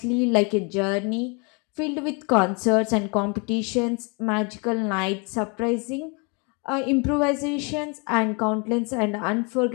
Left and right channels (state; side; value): quieter; right; 32.9 dB